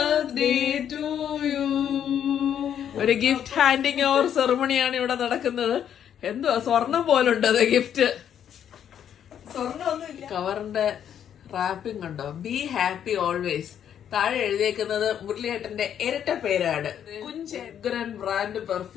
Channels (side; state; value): right; quieter; 9.3 dB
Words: to you. ഒരു ഗിഫ്റ്റ് ഹാൻഡിങ് ഓവർ സെറമണിയാണ് ഇവിടെ നടക്കുന്നത്. എന്തോ സ്വർണം പോലുണ്ട് അത് ഗിഫ്റ്റ്. കവറിന്റെ റാപ്പിംഗ് ഉണ്ടോ? Be happy always. താഴെ എഴുതിയേക്കുന്നത് മുരളിയേട്ടന്റെ ഇരട്ട പേരാണ്. കുഞ്ചൻ ബ്രാൻഡ്